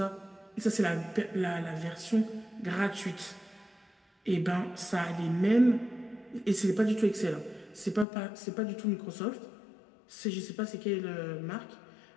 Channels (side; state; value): right; drops out; at 8.1 s